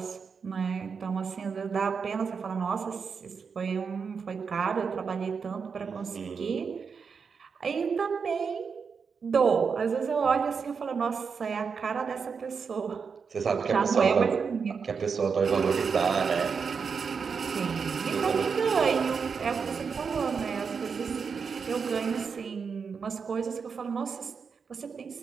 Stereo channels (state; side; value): quieter; left; 5.8 dB